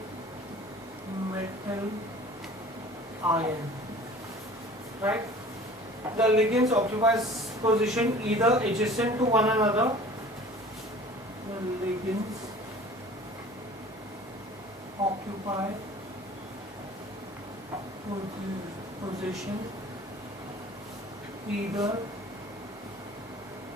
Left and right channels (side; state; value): both; normal; correlation 0.45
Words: metal ion, right? The ligands occupy position either adjacent to one another. The ligands occupy position either